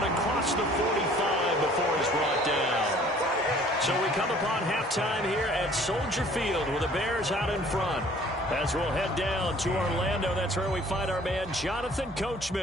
across the 45 before he's brought down. So we come upon halftime here at Soldier Field with the Bears out in front. As we'll head down to Orlando, that's where we find our man Jonathan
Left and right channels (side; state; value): both; normal; correlation 0.54